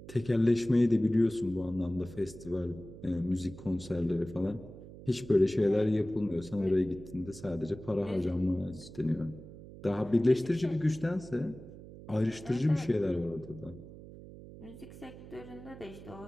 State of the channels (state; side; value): noise; right; hum, 16 dB below the sound